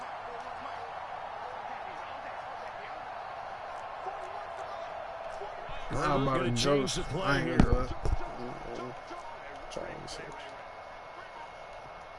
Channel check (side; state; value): both; identical; correlation 1.00